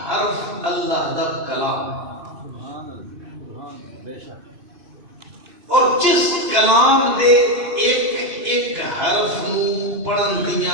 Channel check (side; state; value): left; late; 2.6 ms